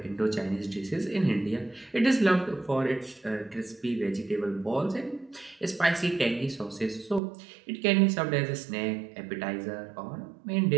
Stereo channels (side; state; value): left; drops out; at 7.2 s